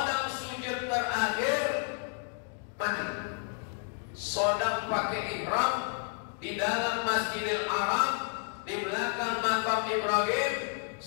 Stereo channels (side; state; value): right; silent; 57 dB below the other